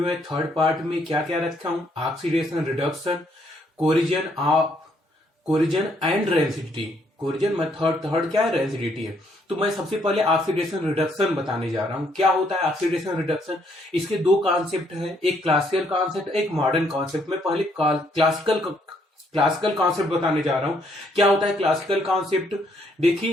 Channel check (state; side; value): normal; both; correlation 0.70